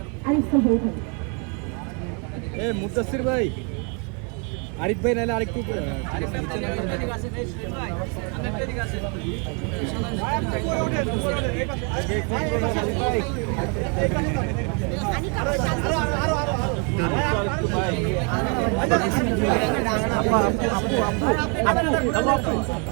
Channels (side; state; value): left; quieter; 36.0 dB